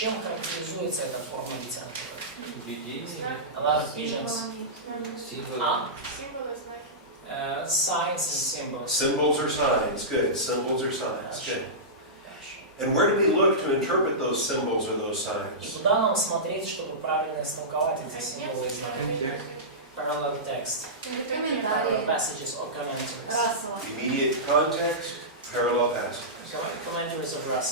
характеризуется эта форма литературы? Видение, A lot of visions. символы. Signs and symbols. Symbols or signs, good. Symbols or signs, Хорошо. good. Хорошо. And where do we look to interpret those symbols or those И signs? куда нам смотреть, чтобы правильно истолковать эти символы и знаки? Parallel text, parallel Комментарии. passages or commentaries. Рассела. Immediate context, parallel passages. Commentaries of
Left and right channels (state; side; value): normal; both; correlation -0.17